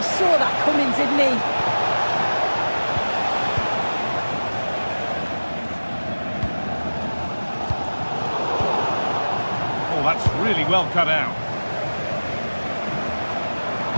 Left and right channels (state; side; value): inverted; both; correlation -1.00